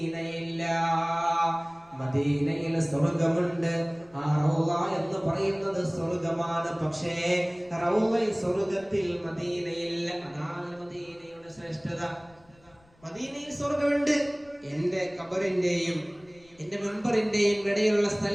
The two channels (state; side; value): noise; left; rumble, 30 dB below the sound